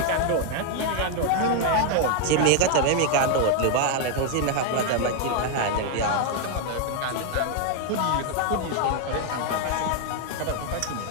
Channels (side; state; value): both; different; correlation 0.01